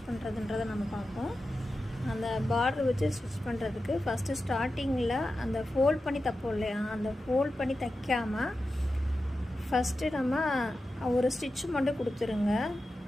பண்ணுறதுன்றதை நம்ம பார்ப்போம். அந்த பார்டர் வச்சு ஸ்டிச் பண்ணுறதுக்கு ஃபஸ்ட்டு ஸ்டார்டிங்கில் அந்த ஃபோல்ட் பண்ணி தைப்போம் இல்லையா, அந்த ஃபோல்ட் பண்ணி தைக்காமல் ஃபஸ்ட்டு நம்ம ஒரு ஸ்டிச் மட்டும் கொடுத்துருங்க.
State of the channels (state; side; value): normal; both; correlation 0.92